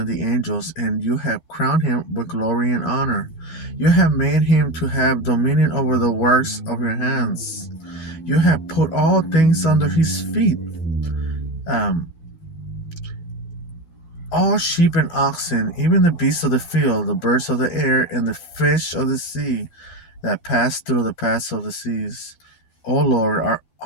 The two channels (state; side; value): late; right; 12 ms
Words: the angels, and you have crowned him with glory and honor. You have made him to have dominion over the works of your hands. You have put all things under his feet, um, all sheep and oxen, even the beasts of the field, the birds of the air, and the fish of the sea that pass through the paths of the seas. O Lord,